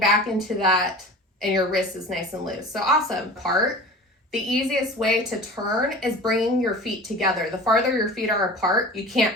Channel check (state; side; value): normal; both; correlation 0.38